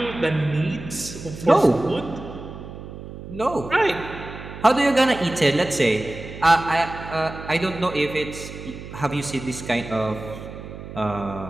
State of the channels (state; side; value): noise; right; hum, 12 dB below the sound